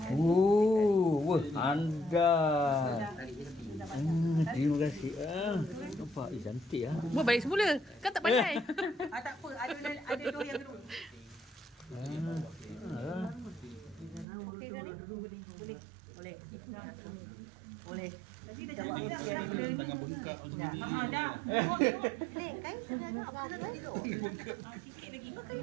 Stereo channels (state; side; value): drops out; left; at 14.2 s